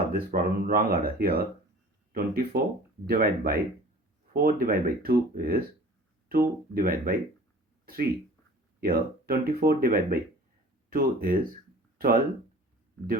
this problem. Wrong order. Here 24 divided by 4 divided by 2 is 2 divided by 3. Here 24 divided by 2 is 12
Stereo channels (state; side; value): normal; both; correlation 0.45